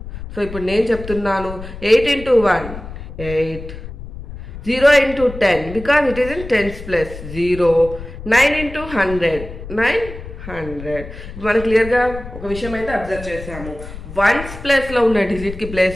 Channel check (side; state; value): left; noise; rumble, 12 dB below the sound